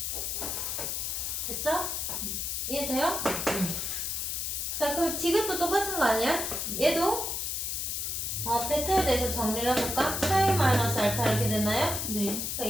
됐죠? 이해돼요? 자, 그럼 디귿도 똑같은 거 아니야? 얘도 베타에 대해서 정리를 해볼까? 파이 마이너스 알파 이렇게 됐나요? 네. 그러니까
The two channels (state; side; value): noise; left; hiss, 2 dB below the sound